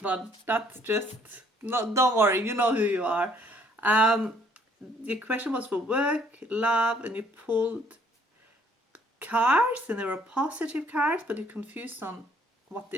but that's just, don't worry, you know who you are. The question was for work, love, and you pulled cards, and they were positive cards, but you're confused on what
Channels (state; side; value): normal; both; correlation 0.63